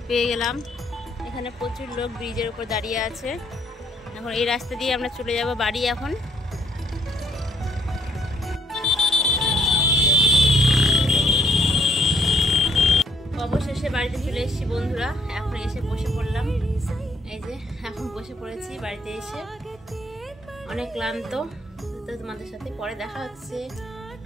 পেয়ে গেলাম। এখানে প্রচুর লোক ব্রিজের উপর দাঁড়িয়ে আছে। এখন এই রাস্তা দিয়ে আমরা চলে যাব বাড়ি। এখন অবশেষে বাড়িতে চলে এসেছি বন্ধুরা। এখন এসে বসে পড়লাম, এই যে এখন বসে পড়েছি বাড়িতে এসে, অনেক ক্লান্ত। তো তোমাদের সাথে পরে দেখা হচ্ছে,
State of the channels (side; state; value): both; normal; correlation 0.66